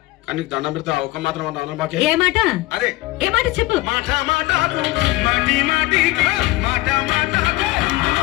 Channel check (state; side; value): quieter; right; 19.6 dB